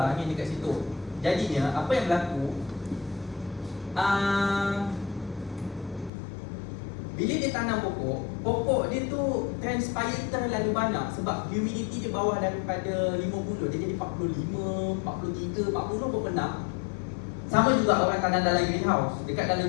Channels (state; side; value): drops out; right; at 6.1 s